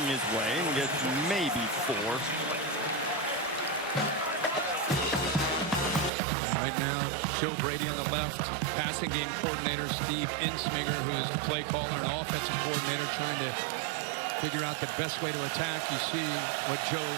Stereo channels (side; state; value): left; drops out; at 6.1 s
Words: his way and gets maybe 4. Right now, Joe Brady on the left, passing game coordinator Steve Insminger, who is the play caller and offensive coordinator, trying to figure out the best way to attack. You see what Joe